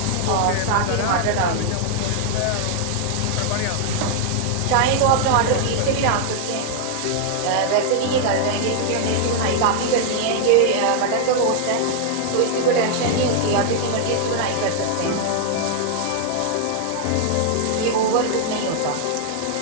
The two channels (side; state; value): both; different; correlation -0.01